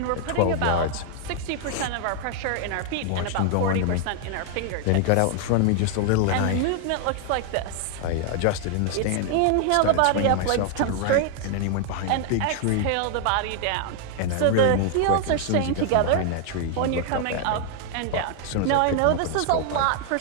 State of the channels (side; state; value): both; different; correlation 0.00